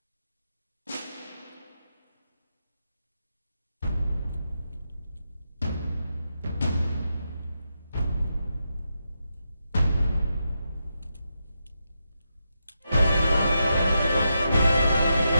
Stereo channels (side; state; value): both; inverted; correlation -0.86